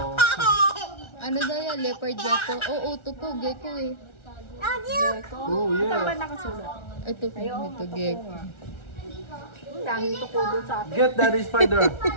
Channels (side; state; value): right; late; 1.4 ms